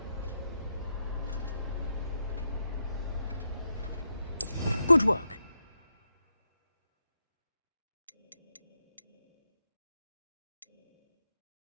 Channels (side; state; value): both; inverted; correlation -0.84